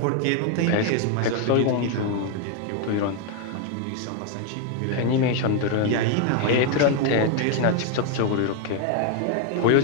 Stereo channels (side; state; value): both; different; correlation 0.00